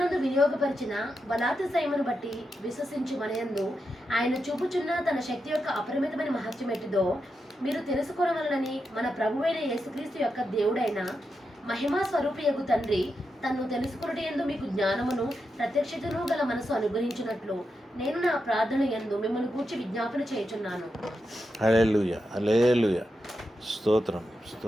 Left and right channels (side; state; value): both; normal; correlation 0.87